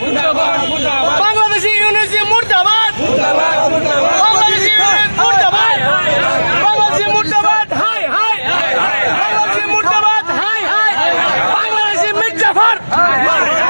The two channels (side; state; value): both; inverted; correlation -1.00